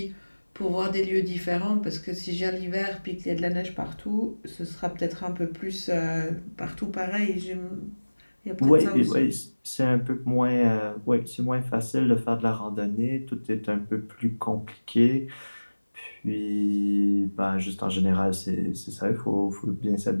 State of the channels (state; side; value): inverted; both; correlation -1.00